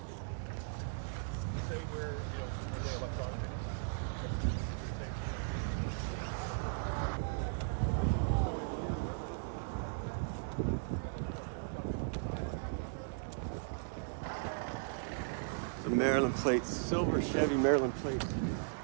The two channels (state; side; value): silent; left; digital silence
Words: The Maryland plate, silver Chevy Maryland plate.